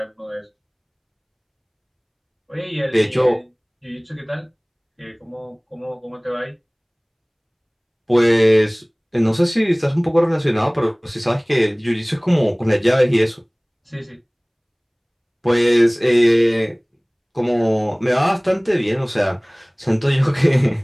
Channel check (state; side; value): identical; both; correlation 1.00